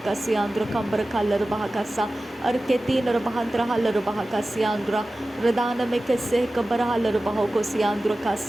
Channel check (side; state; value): both; normal; correlation 0.96